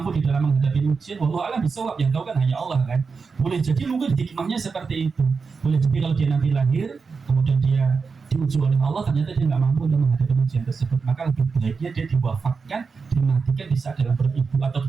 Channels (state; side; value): quieter; left; 5.0 dB